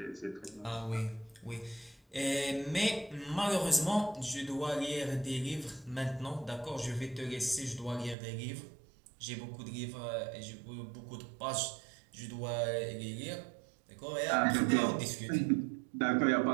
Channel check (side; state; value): left; drops out; at 8.2 s